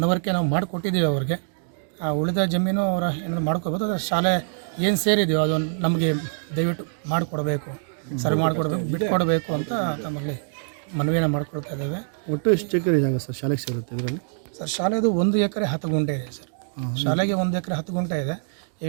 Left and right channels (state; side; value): silent; left; digital silence